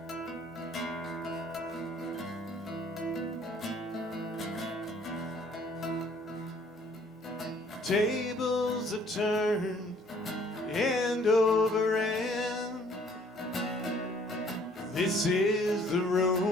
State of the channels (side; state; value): both; normal; correlation 0.59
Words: Tables have turned end over end. This is the